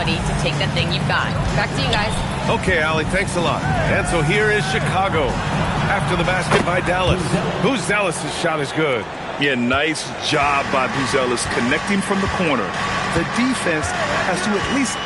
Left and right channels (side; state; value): both; identical; correlation 1.00